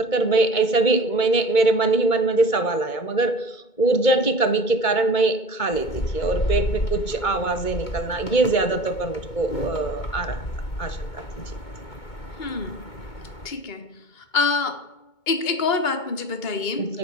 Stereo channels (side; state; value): right; late; 2.2 ms